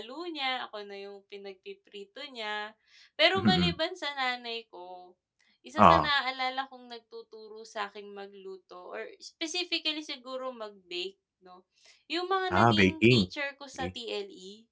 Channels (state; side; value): identical; both; correlation 1.00